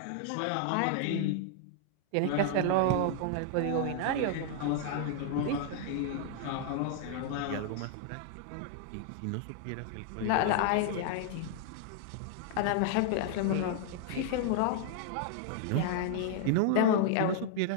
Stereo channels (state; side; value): different; both; correlation -0.01